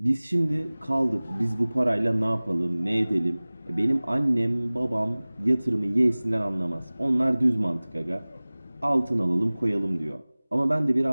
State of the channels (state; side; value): inverted; both; correlation -1.00